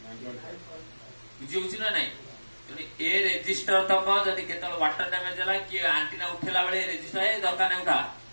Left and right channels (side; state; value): both; inverted; correlation -1.00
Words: बुझी होची ना नहीं तनी ए रजिस्टर तक जदी केतल वाटर डैमेज होला कि एंटीना उठेला बेले रजिस्टर ए दरकार नै उठा